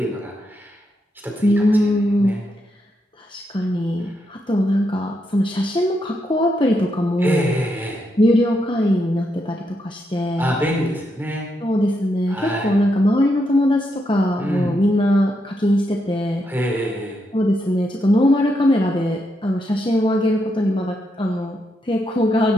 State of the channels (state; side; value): normal; both; correlation 0.81